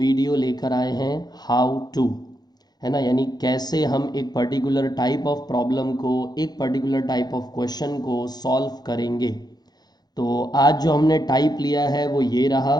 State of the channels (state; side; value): late; right; 0.19 ms